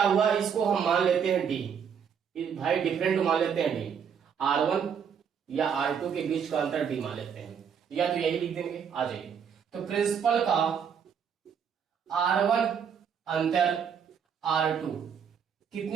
हुआ, इसको हम मान लेते हैं D, भाई डिफरेंट मान लेते हैं D, R1 या R2 के बीच का अंतर D मान लेते हैं, या तो यही लिख देंगे। आ जाइए, तो प्रिंसिपल का R1 अंतर R2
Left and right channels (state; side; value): quieter; left; 7.4 dB